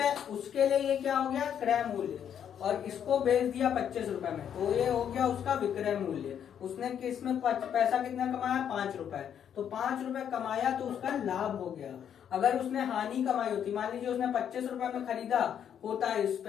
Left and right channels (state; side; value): quieter; right; 8.9 dB